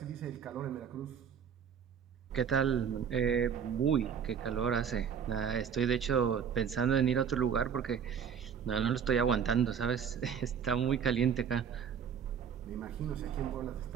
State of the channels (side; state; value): left; quieter; 7.6 dB